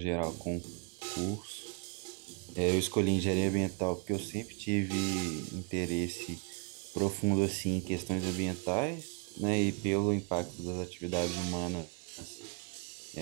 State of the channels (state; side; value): quieter; left; 36.0 dB